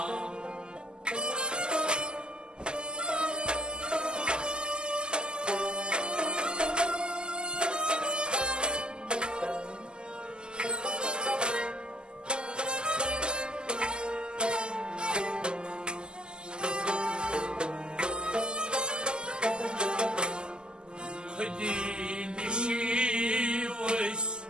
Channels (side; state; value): left; late; 0.047 ms